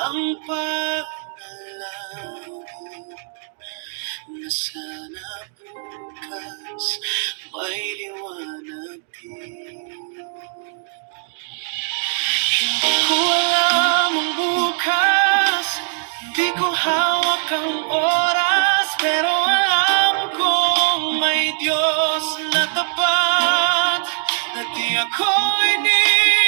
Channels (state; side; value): silent; left; digital silence